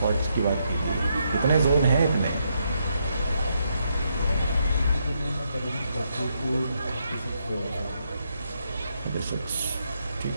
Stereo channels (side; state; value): both; inverted; correlation -0.78